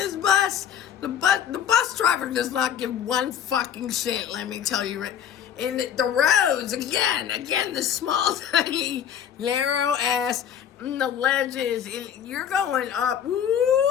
bus. The bus driver does not give one fucking shit, let me tell you. And the roads, again, the small, tiny, narrow ass, and the ledges, and you're going up. Woo,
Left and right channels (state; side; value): quieter; right; 9.2 dB